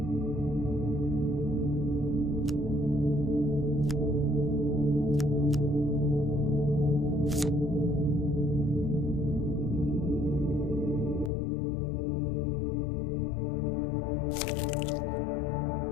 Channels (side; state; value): right; drops out; at 11.3 s